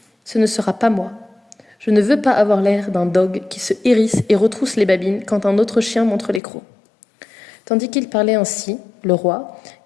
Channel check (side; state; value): right; drops out; at 6.4 s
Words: Ce ne sera pas moi. Je ne veux pas avoir l'air d'un dogue qui se hérisse et retrousse les babines quand un autre chien montre les crocs. Tandis qu'il parlait ainsi, le roi,